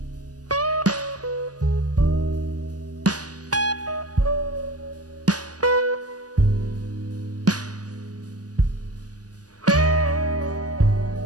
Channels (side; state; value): left; late; 0.68 ms